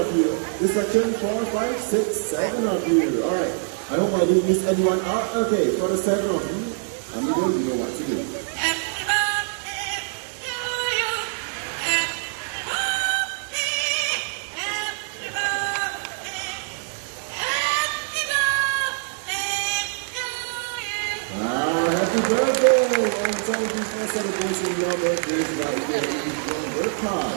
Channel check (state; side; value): silent; left; 62 dB below the other